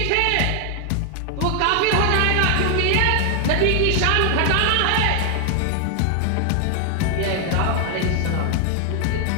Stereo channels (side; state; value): both; different; correlation 0.00